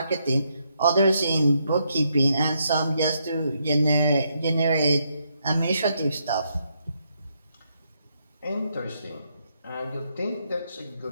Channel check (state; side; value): inverted; both; correlation -0.77